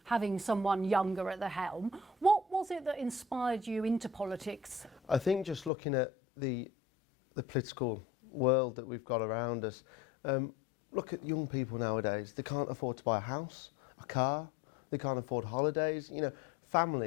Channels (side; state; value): right; drops out; at 5.7 s